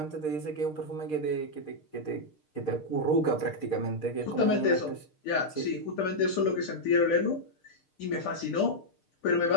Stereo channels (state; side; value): late; right; 6.6 ms